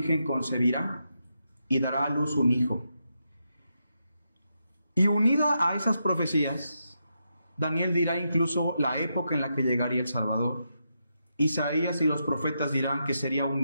concebirá y dará a luz un hijo. Y unida a esas profecías, Daniel dirá incluso la época en la que llegaría el Salvador. Isaías y los profetas dirán que sería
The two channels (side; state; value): both; inverted; correlation -0.84